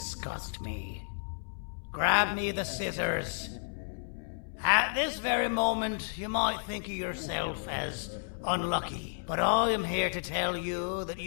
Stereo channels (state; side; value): silent; right; 56 dB below the other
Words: me. Grab me the scissors. At this very moment, you might think of yourself as unlucky, but I am here to tell you that